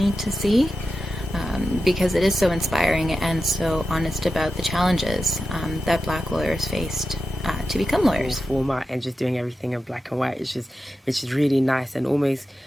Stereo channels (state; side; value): normal; both; correlation 0.91